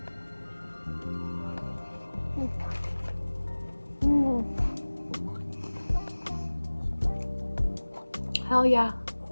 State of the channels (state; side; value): inverted; both; correlation -1.00